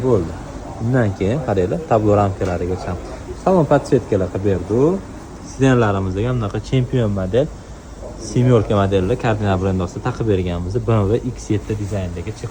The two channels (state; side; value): identical; both; correlation 1.00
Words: bo'ldi. Undan keyin qaranglar, tablo ramkalarigacha salon podsetkalar qilib berdi. Sidenlarimizga bunaqa chempion model semyorka modelli kardinal brend ostida taqib berganmiz. BMW X7 dizaynidagi